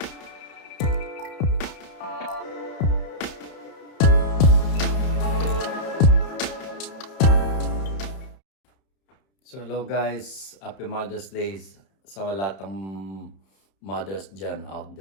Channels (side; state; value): right; late; 31 ms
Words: So hello guys, happy Mother's Day sa lahat ng mothers dyan out